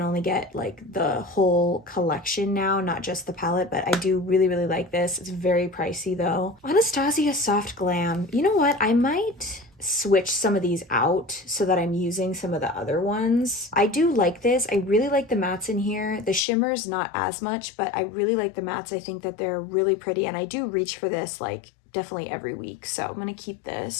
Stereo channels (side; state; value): right; drops out; at 16.4 s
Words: only get like the whole collection now, not just the palette, but I do really like this. It's very pricey though. Anastasia Soft Glam. You know what? I might switch some of these out so that I'm using some of the other ones. I do like this. I really like the mattes in here. The shimmers, not as much, but I really like the mattes. I think that they're really pretty and I do reach for this like definitely every week. So I'm going to keep